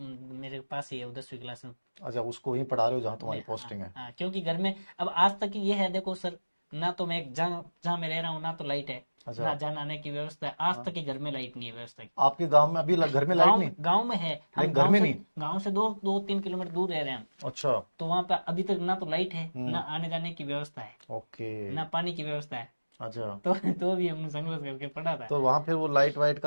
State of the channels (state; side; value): inverted; both; correlation -1.00